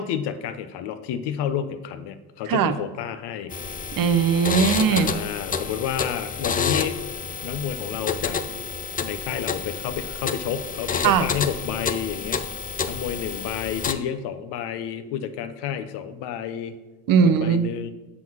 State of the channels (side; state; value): both; normal; correlation 0.19